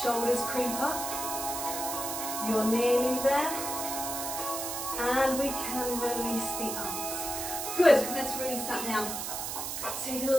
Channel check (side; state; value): right; noise; hiss, 4 dB below the sound